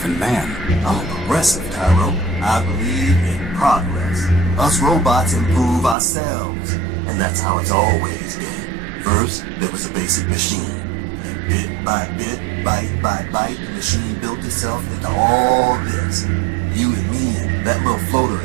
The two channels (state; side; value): drops out; left; at 6.0 s